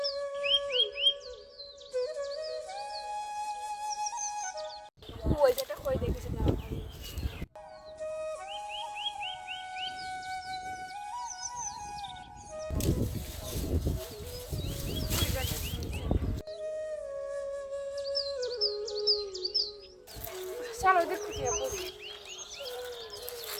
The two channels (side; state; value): both; identical; correlation 1.00